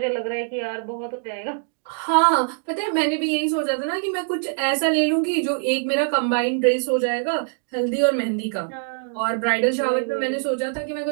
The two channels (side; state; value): left; silent; digital silence